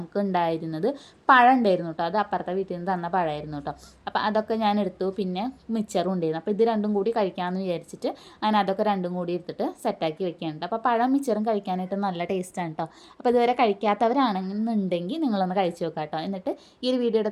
ഉണ്ടായിരുന്നത് പഴം ഉണ്ടായിരുന്നു കേട്ടോ. അത് അപ്പുറത്തെ വീട്ടിൽ നിന്ന് തന്ന പഴമായിരുന്നു കേട്ടോ. അപ്പോൾ അതൊക്കെ ഞാൻ എടുത്തു. പിന്നെ മിച്ചറും ഉണ്ടായിരുന്നു. അപ്പോൾ ഇത് രണ്ടും കൂടി കഴിക്കാമെന്ന് വിചാരിച്ചിട്ട് അങ്ങനെ അതൊക്കെ രണ്ടും കൂടി എടുത്തിട്ട് സെറ്റാക്കി വെക്കാനുണ്ട്. അപ്പോൾ പഴം മിച്ചറും കഴിക്കാനായിട്ട് നല്ല ടേസ്റ്റാണ് കേട്ടോ. അപ്പോൾ ഇതുവരെ കഴിക്കാത്തവരാണെന്നുണ്ടെങ്കിൽ നിങ്ങളൊന്ന് കഴിച്ച് നോക്കാം കേട്ടോ. എന്നിട്ട് ഈ ഒരു വീഡിയോയുടെ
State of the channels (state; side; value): identical; both; correlation 1.00